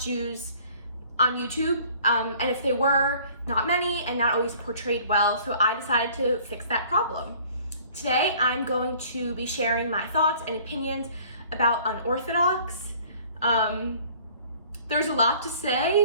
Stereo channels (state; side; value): inverted; both; correlation -0.53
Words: Jews on YouTube, and if they were, not many and not always portrayed well, so I decided to fix that problem. Today, I'm going to be sharing my thoughts and opinions about Unorthodox. There's a lot to